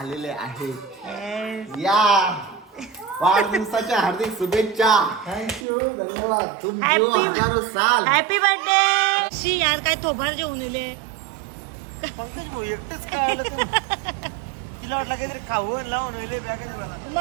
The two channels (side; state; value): left; drops out; at 5.7 s